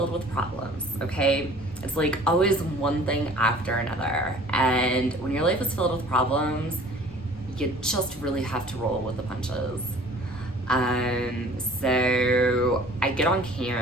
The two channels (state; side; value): normal; both; correlation 0.50